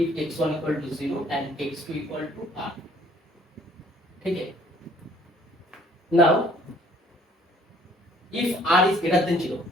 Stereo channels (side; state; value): both; normal; correlation 0.59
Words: x1 equal to 0 and x2 equal to r. Okay. Now if r is greater than 0,